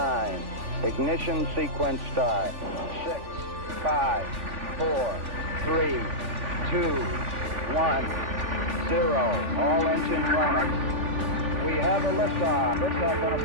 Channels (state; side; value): late; left; 3.5 ms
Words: Ignition sequence start. 6, 5, 4, 3, 2, 1, 0. All engine running. We have a liftoff. Liftoff on